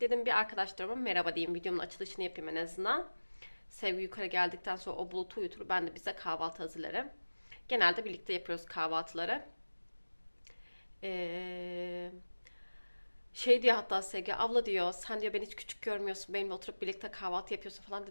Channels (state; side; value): inverted; both; correlation -1.00